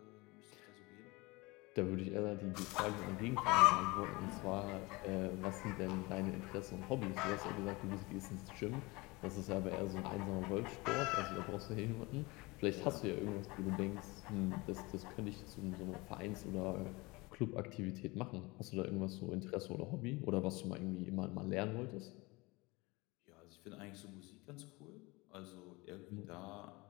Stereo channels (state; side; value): quieter; right; 24.1 dB